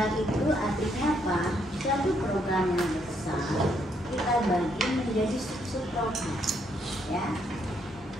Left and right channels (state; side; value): normal; both; correlation 0.73